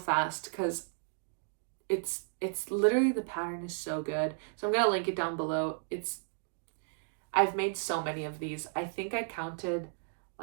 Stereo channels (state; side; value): silent; left; digital silence